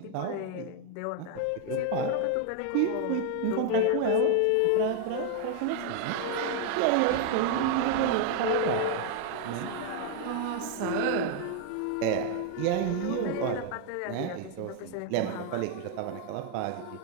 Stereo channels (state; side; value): different; both; correlation 0.00